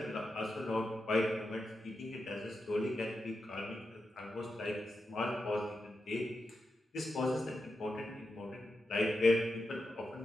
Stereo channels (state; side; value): normal; both; correlation 0.88